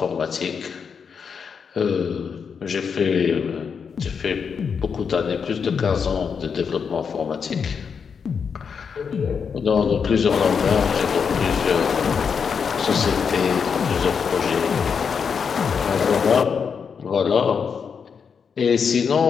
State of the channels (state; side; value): quieter; right; 6.3 dB